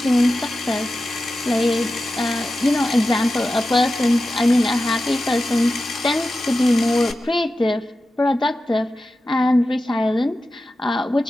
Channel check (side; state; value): both; normal; correlation 0.93